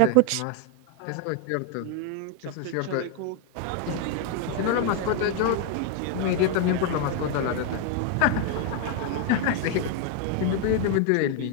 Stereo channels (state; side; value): different; both; correlation 0.01